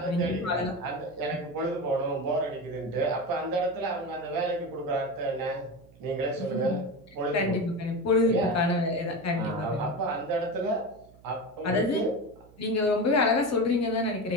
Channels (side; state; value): right; noise; hum, 25 dB below the sound